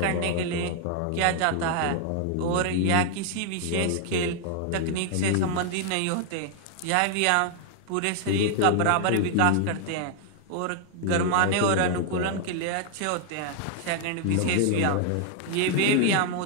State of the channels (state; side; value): different; both; correlation 0.00